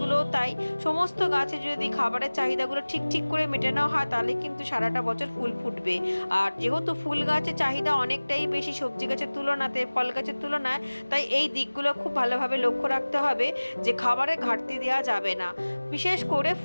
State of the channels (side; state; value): both; inverted; correlation -1.00